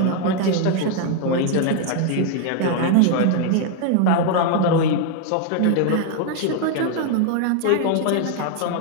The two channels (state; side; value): different; both; correlation 0.00